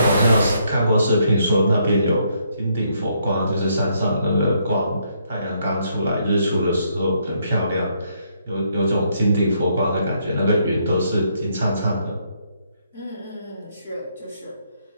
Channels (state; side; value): inverted; both; correlation -0.72